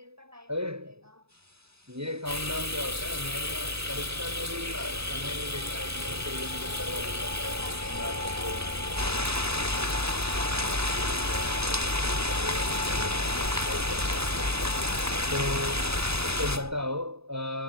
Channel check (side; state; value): left; late; 0.78 ms